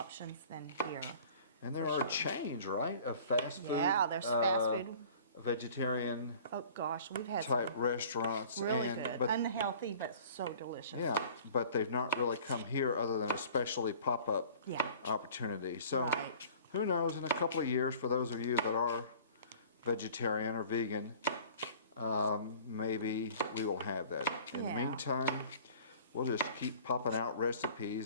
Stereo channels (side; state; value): both; inverted; correlation -0.47